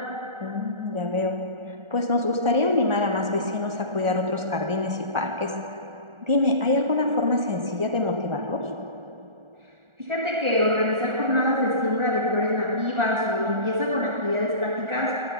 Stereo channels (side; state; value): left; late; 1.4 ms